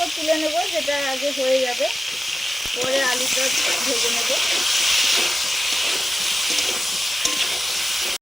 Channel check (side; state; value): both; normal; correlation 0.95